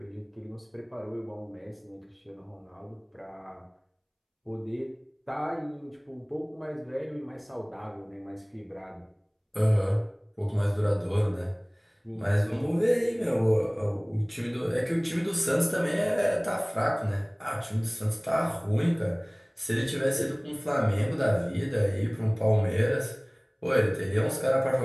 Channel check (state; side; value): identical; both; correlation 1.00